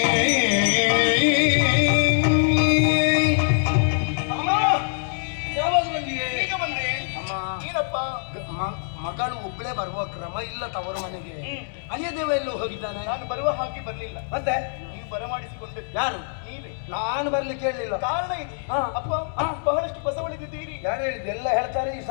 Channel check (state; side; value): silent; right; digital silence